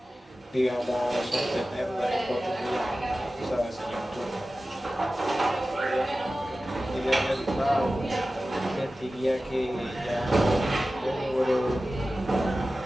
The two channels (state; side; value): normal; both; correlation 0.95